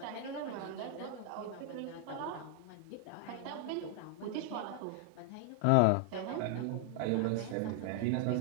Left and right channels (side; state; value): both; different; correlation 0.00